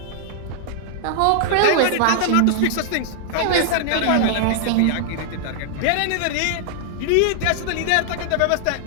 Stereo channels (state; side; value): different; both; correlation -0.01